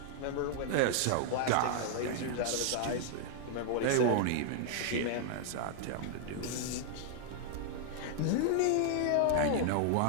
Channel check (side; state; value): both; different; correlation 0.00